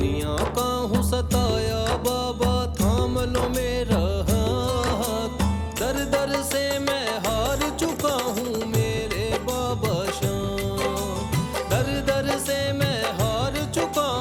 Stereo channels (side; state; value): both; identical; correlation 1.00